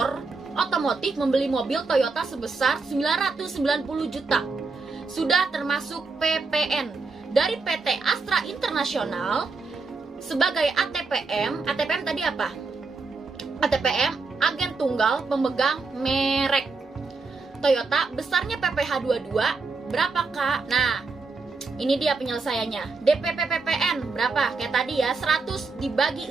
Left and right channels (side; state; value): left; quieter; 4.2 dB